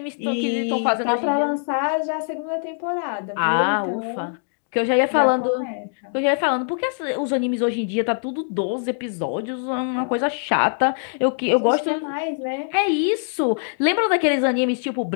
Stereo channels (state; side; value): silent; right; digital silence